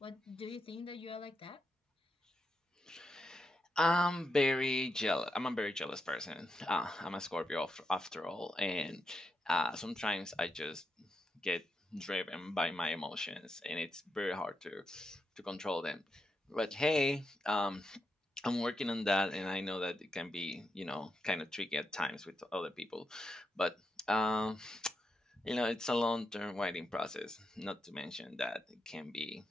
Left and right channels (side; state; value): both; normal; correlation 0.85